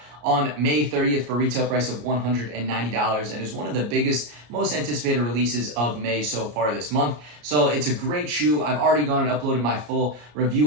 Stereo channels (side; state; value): left; late; 34 ms